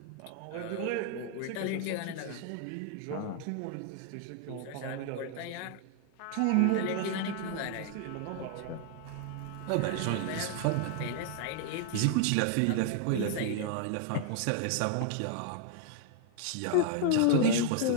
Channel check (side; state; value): both; different; correlation 0.00